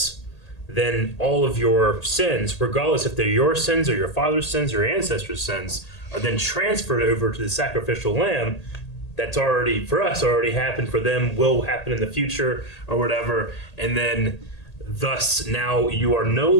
then all of your sins, regardless if they're your sins or your father's sins or your ancestors' sins, are then transferred over to the sacrificial lamb that's already, for us, already happened, for them will happen in the future or whatever. And then thus now you are no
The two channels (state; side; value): late; right; 1.8 ms